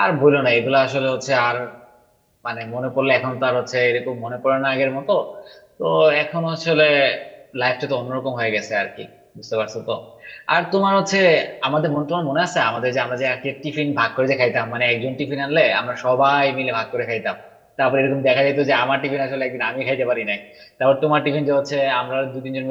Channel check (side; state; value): both; identical; correlation 1.00